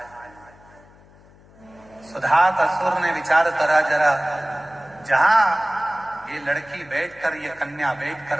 सुधात असुर ने विचार करा, जरा जहां ये लड़की बैठकर, ये कन्या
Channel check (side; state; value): left; noise; hum, 26 dB below the sound